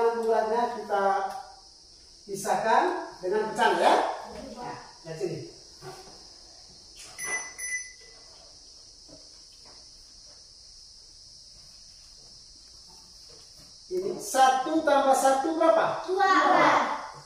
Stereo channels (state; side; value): identical; both; correlation 1.00